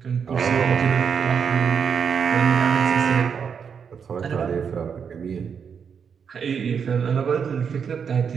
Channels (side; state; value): left; quieter; 6.8 dB